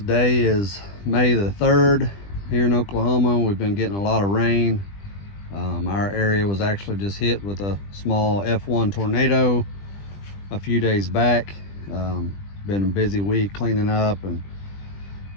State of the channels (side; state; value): right; late; 20 ms